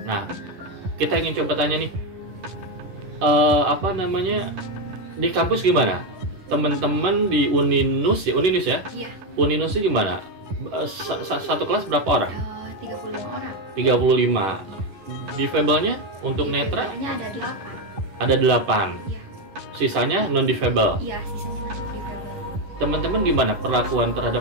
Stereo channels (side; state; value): left; late; 10 ms